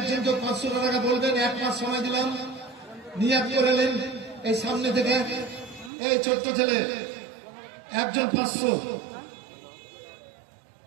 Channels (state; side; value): drops out; left; at 5.9 s